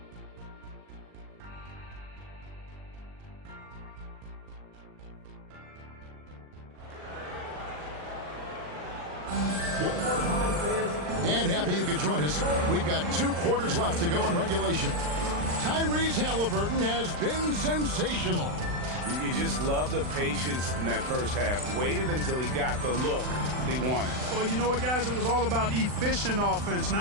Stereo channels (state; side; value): late; left; 40 ms